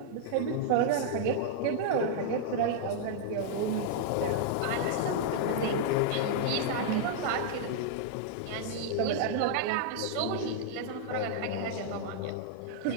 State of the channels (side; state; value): both; different; correlation -0.01